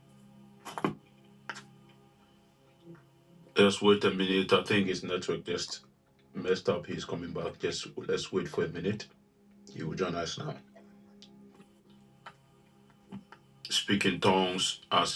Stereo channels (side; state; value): both; identical; correlation 1.00